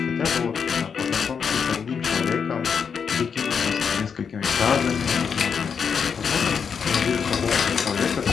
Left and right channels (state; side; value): quieter; right; 6.5 dB